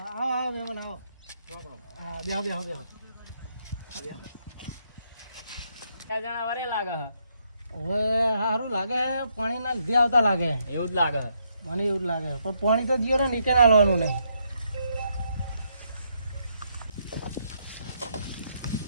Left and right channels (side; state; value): both; inverted; correlation -0.75